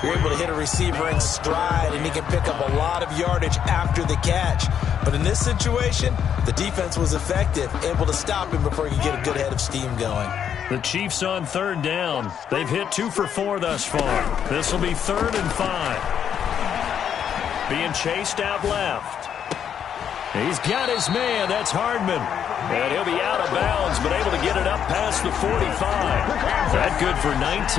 you're able to hit a receiver in stride, and he can pick up a lot of yardage after the catch. But in this situation, the defense was effective, able to stop him before he could get a good head of steam going. The Chiefs on 3rd down. They've hit 2 for 4 thus far. This will be 3rd and 5. Being chased out left. He's got his man. That's Hardman. And he'll be out of bounds, but able to get it up past the 45. That good for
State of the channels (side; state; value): right; quieter; 8.6 dB